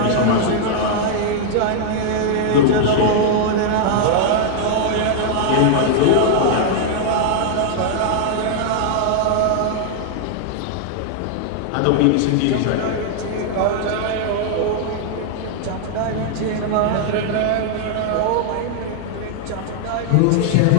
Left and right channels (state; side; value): different; both; correlation 0.00